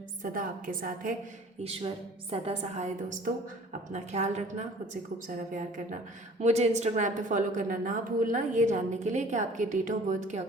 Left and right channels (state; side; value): normal; both; correlation 0.49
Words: सदा आपके साथ है, ईश्वर सदा सहाय। दोस्तों अपना ख्याल रखना, खुद से खूब सारा प्यार करना। मुझे इंस्टाग्राम पे फॉलो करना ना भूलना, ये जानने के लिए कि आपके डेट ऑफ बर्थ के